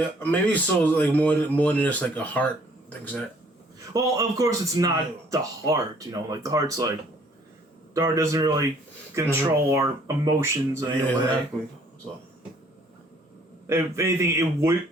maybe souls more than just a heart. Things that. Well, of course it's not the heart. The heart's the heart doesn't really control our emotions in any way. Exactly. So. If anything, it would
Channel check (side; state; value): both; normal; correlation 0.60